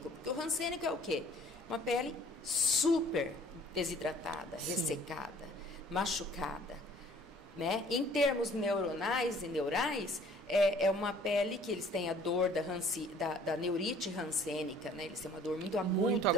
Porque o rancênico é o quê? Uma pele super desidratada, ressecada, machucada, né? Em termos neuronais e neurais, é uma pele que eles têm a dor da neurite rancênica, né? Eles têm uma dor muito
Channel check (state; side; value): normal; both; correlation 0.55